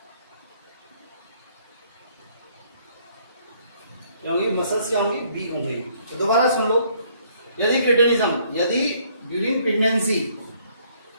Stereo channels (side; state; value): both; inverted; correlation -0.65